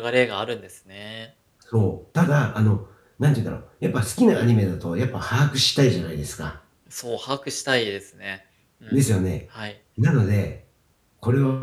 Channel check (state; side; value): identical; both; correlation 1.00